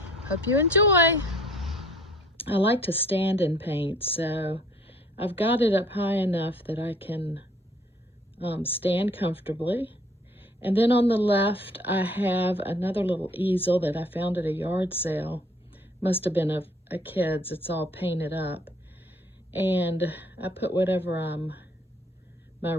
hope you enjoy. I like to stand and paint, so I've got it up high enough that I can stand comfortably. And then on the left I have another little easel that I found at a yard sale. Must have been a kid's. It's all painted up. And I put whatever my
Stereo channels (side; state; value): both; normal; correlation 0.58